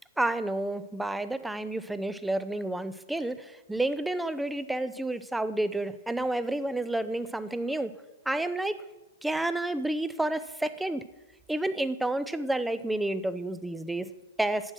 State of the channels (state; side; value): normal; both; correlation 0.90